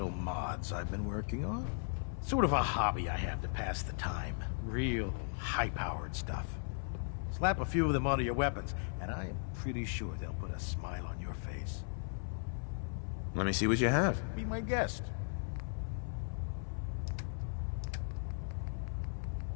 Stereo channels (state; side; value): silent; right; digital silence